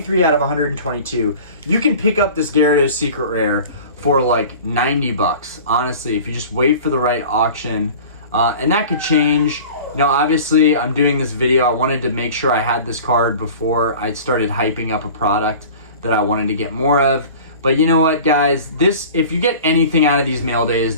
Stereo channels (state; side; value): inverted; both; correlation -0.41